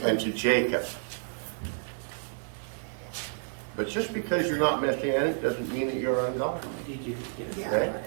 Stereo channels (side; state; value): left; silent; 58 dB below the other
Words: and to Jacob. But just because you're not Messianic doesn't mean that you're ungodly. Did you get it? Yeah, I Okay. got